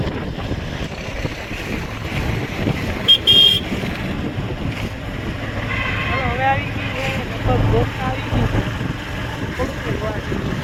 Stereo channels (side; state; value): both; identical; correlation 1.00